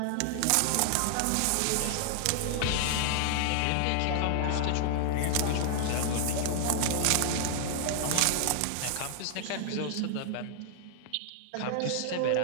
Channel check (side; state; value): both; different; correlation 0.00